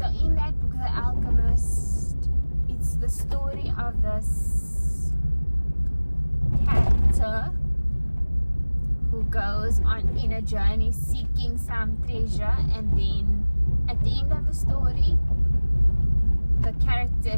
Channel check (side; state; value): both; inverted; correlation -1.00